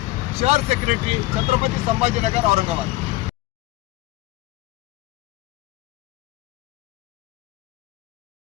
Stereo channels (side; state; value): right; quieter; 18.9 dB